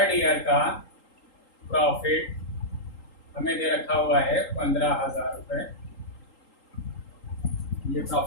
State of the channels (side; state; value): right; late; 3.8 ms